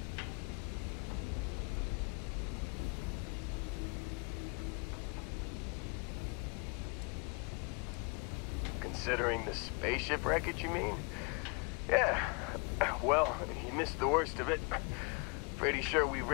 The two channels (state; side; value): quieter; right; 32.1 dB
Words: Considering the spaceship wreckage, you mean? Yeah. Well, you missed the worst of it. Pretty sure we